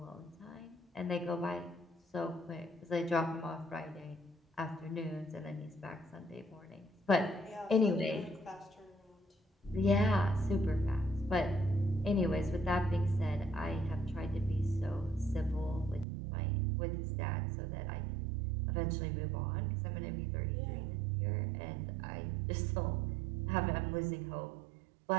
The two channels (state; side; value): drops out; left; at 16.1 s